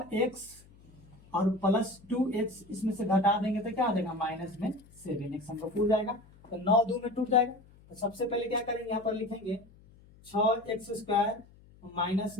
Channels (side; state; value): left; noise; hum, 25 dB below the sound